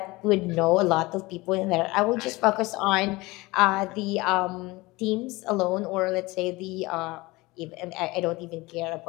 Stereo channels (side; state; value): right; quieter; 21.8 dB